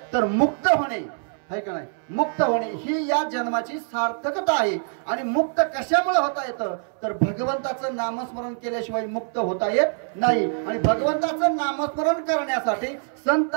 तर मुक्त होणे, आहे का नाही, मुक्त होणे ही या जन्माची सार्थकता आहे. आणि मुक्त कशामुळे होता येतं, तर भगवंताचं नामस्मरण केल्याशिवाय मुक्त होता येत नाही. आणि भगवंताचं नामस्मरण करण्यासाठी संत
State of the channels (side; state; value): left; silent; 62 dB below the other